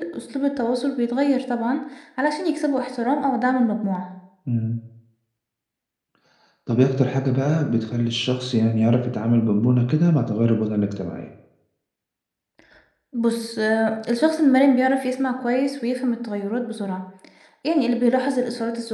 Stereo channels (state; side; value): identical; both; correlation 1.00